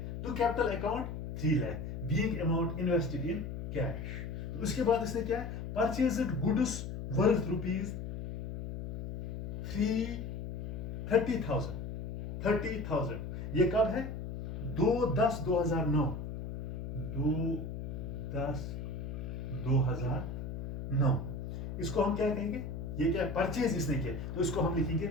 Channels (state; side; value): noise; left; hum, 6 dB below the sound